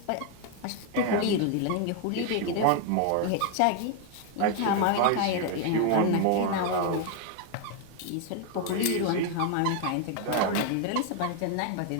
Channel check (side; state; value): both; different; correlation 0.01